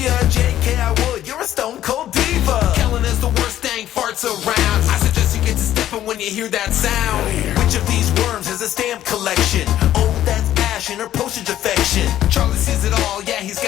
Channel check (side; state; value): right; quieter; 12.4 dB